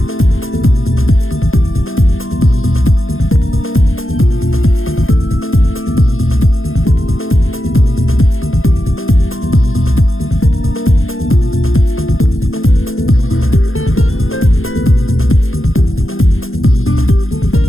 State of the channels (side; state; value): right; late; 0.60 ms